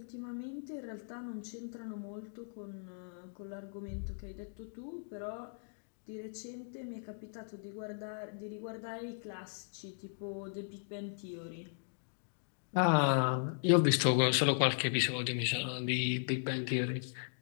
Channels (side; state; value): right; silent; digital silence